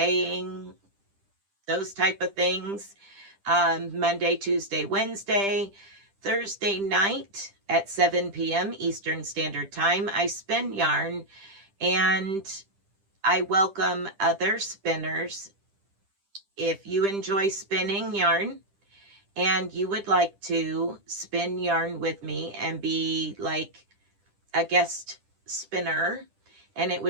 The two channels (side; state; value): left; late; 10 ms